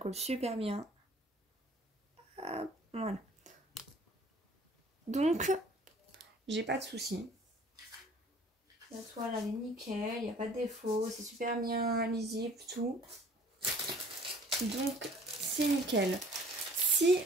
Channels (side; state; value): both; normal; correlation 0.53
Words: super bien. Hop, voilà. Donc, j'ai pas de soucis. La toile, elle est nickel, il n'y a pas de défaut, c'est super bien lisible, tout. Donc, c'est nickel. Si